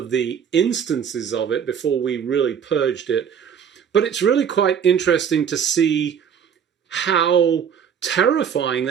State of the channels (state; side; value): quieter; left; 7.7 dB